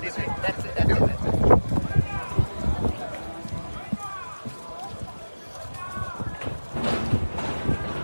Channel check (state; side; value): inverted; both; correlation -1.00